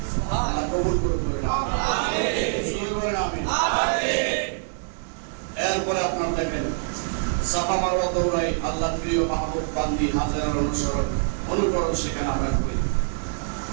আল্লাহ কবুল করুন আমিন আমিন এরপরে আপনার দেখেন সাফা মারওয়া দৌড়াই আল্লাহর প্রিয় মাহবুব বান্দি হাজেরার অনুকরণ সেখানে আমরা করি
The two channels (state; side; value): silent; left; digital silence